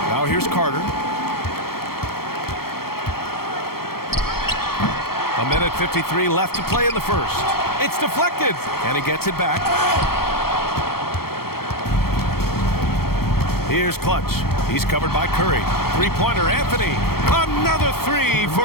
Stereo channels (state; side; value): late; right; 0.94 ms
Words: Now here's Carter. A minute 53 left to play in the first. It's deflected, and he gets it back. Here's Clutch. He's covered by Curry. Three-pointer, Anthony. Another three